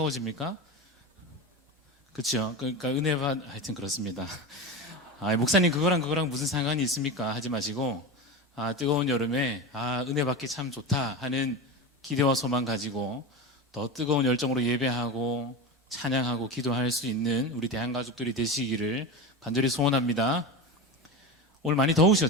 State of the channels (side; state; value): both; normal; correlation 0.24